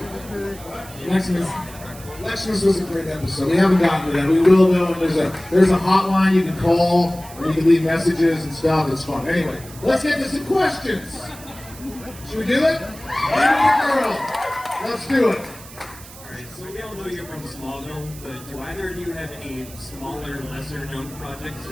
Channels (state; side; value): noise; right; hiss, 18 dB below the sound